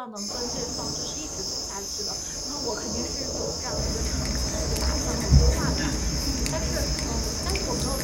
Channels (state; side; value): identical; both; correlation 1.00